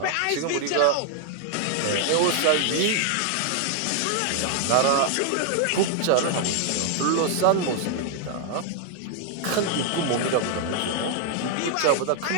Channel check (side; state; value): both; different; correlation 0.00